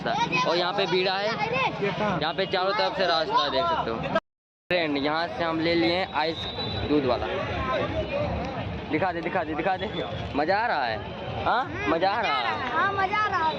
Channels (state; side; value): identical; both; correlation 1.00